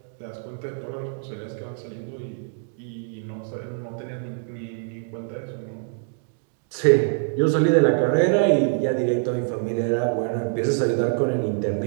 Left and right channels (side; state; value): left; silent; digital silence